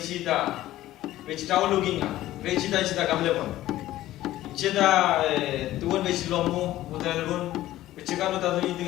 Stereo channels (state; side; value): quieter; right; 14.9 dB